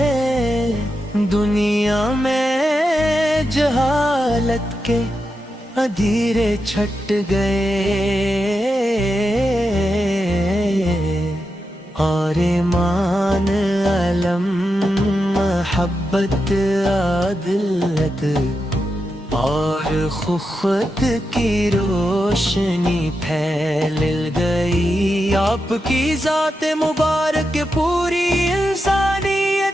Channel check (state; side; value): normal; both; correlation 0.88